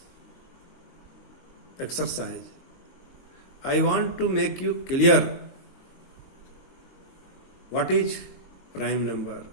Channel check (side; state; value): right; late; 22 ms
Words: exercise, I want to make you clear what is prime number.